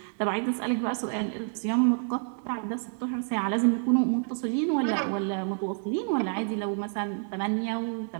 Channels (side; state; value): left; silent; 57 dB below the other